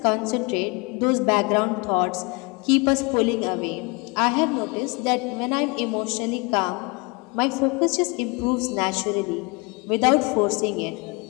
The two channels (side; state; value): right; quieter; 28.9 dB